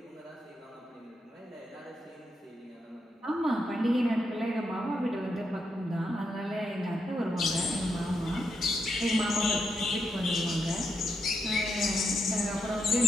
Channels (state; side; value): normal; both; correlation 0.82